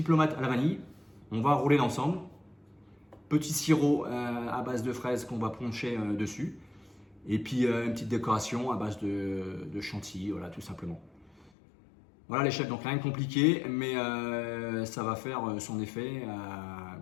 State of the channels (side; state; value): right; drops out; at 11.5 s